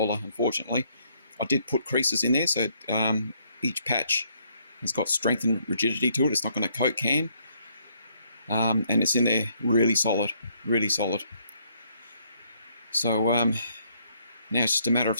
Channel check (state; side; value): inverted; both; correlation -0.69